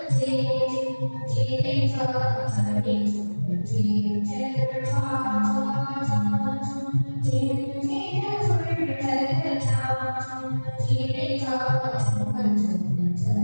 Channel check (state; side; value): inverted; both; correlation -1.00